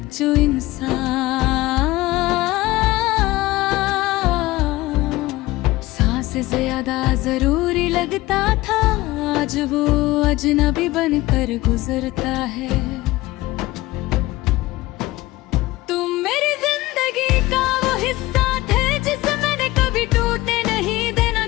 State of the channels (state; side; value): quieter; right; 18.6 dB